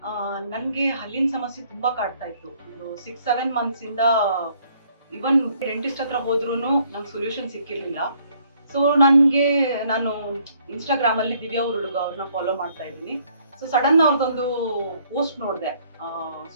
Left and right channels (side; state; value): both; inverted; correlation -0.65